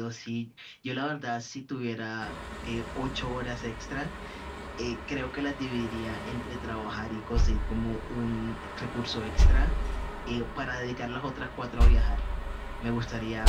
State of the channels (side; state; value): both; identical; correlation 1.00